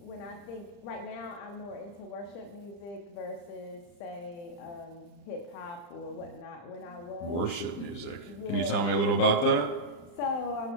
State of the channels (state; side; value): late; right; 35 ms